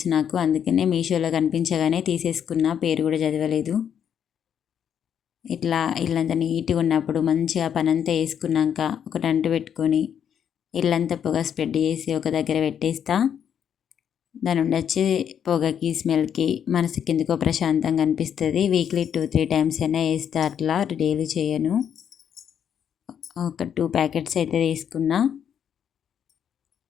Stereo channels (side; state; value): right; quieter; 8.6 dB